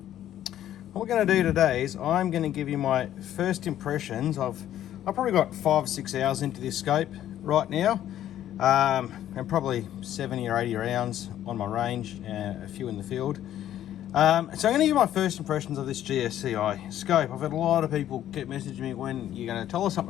what we're going to do today is I'm going to give you my first impressions of, I've probably got 5 or 6 hours into this scope right now, and probably 70 or 80 rounds on my range, a few in the field. So I'm going to give you my first impressions of this GSCI scope. I've had a lot of people keep messaging me when you're going to tell us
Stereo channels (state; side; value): quieter; right; 11.8 dB